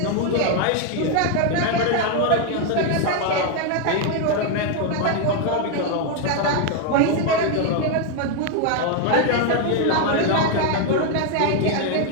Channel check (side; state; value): both; different; correlation 0.01